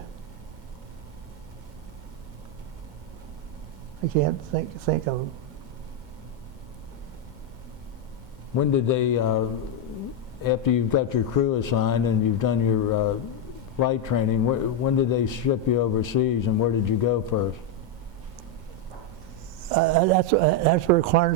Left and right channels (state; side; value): late; left; 2.1 ms